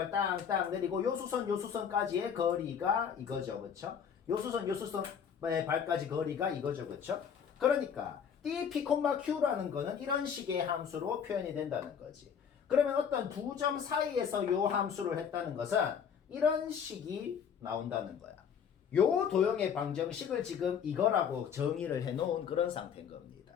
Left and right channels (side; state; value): right; quieter; 7.5 dB